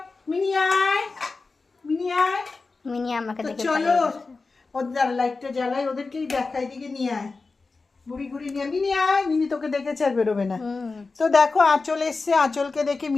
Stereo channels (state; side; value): quieter; right; 4.0 dB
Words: মিনি আয়, মিনি আয়। মিনি আমাকে দেখে চলো ওদের লাইটটা জ্বালাই, ওদেরকেই দেখাই, দিকে নিয়ে আয়, বুড়ি বুড়ি নিয়ে। মিনি আয়, মিনি তোকে দেখেছে আর বেরোবে না। তো দেখো আঁচল এসছে, আঁচলকে দেখে